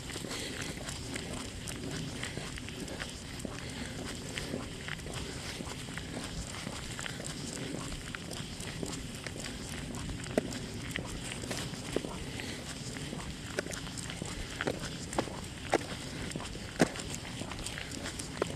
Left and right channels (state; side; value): identical; both; correlation 1.00